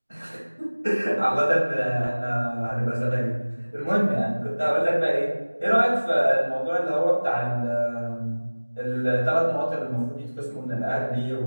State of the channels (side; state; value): both; inverted; correlation -1.00